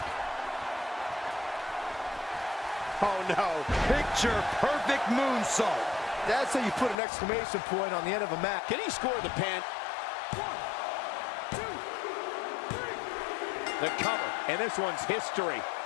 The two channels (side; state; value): right; drops out; at 7.0 s